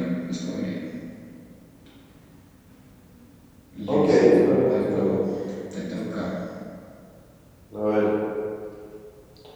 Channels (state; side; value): identical; both; correlation 1.00